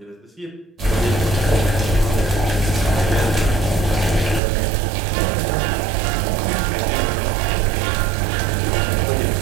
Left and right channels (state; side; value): drops out; left; at 4.4 s